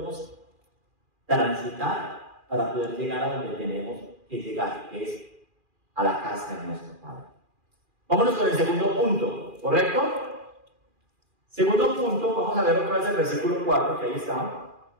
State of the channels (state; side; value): late; left; 2.4 ms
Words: transitar para poder llegar a donde tenemos que llegar, que es a la casa de nuestro Padre. Vámonos con el segundo punto, ¿correcto? Segundo punto, vamos a ver otra vez el versículo 4, que ahí está.